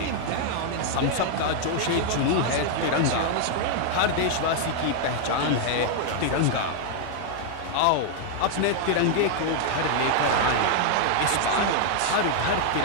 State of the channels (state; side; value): different; both; correlation 0.00